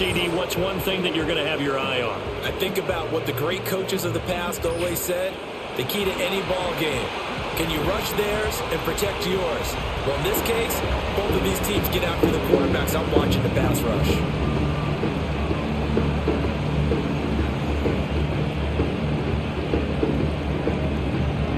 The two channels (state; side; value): identical; both; correlation 1.00